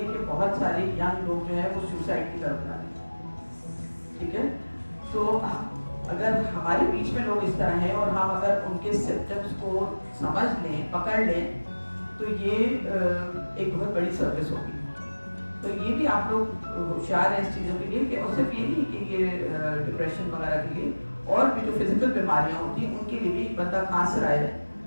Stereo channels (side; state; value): both; inverted; correlation -1.00